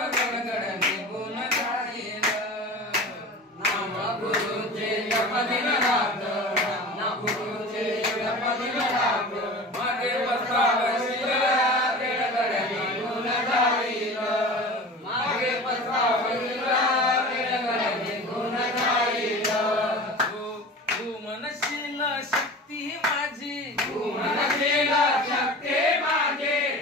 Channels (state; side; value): normal; both; correlation 0.36